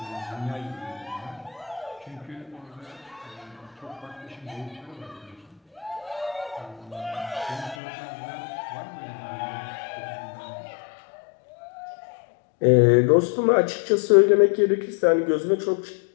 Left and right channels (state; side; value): drops out; right; at 7.8 s